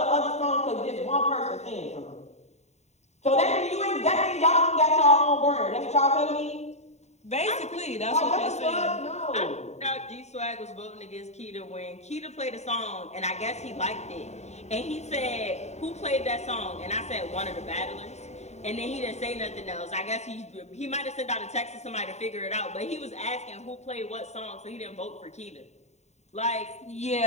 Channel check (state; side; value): late; right; 0.32 ms